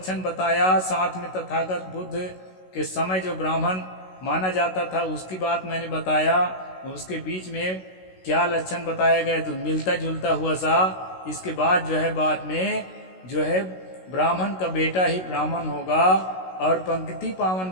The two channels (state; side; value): late; right; 16 ms